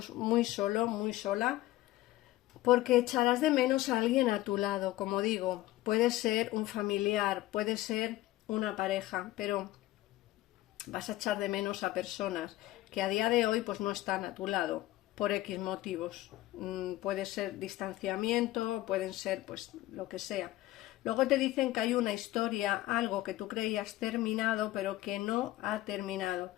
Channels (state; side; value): quieter; right; 16.4 dB